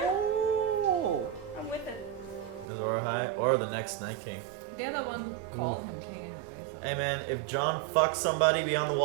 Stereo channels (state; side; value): drops out; left; at 2.7 s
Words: I'm with it. Azor Ahai or the next Night King. They're the one who called him king anyway. So. Hey man, if John fucks somebody beyond the